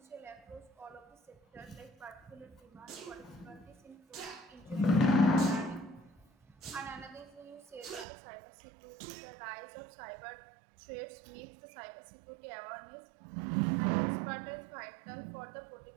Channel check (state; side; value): drops out; left; at 8.1 s